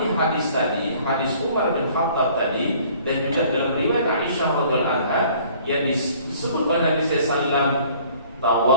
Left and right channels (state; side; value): inverted; both; correlation -0.55